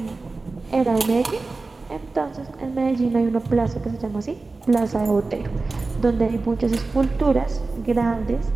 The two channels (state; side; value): quieter; left; 3.6 dB